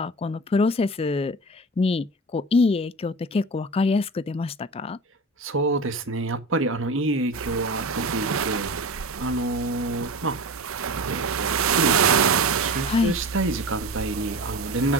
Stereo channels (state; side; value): normal; both; correlation 0.31